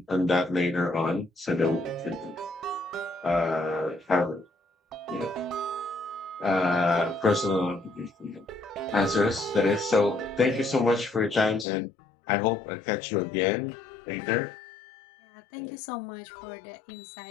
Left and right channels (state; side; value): drops out; right; at 11.7 s